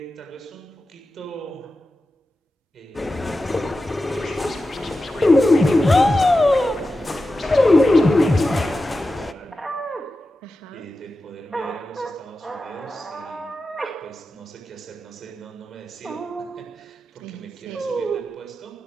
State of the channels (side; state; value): both; normal; correlation 0.92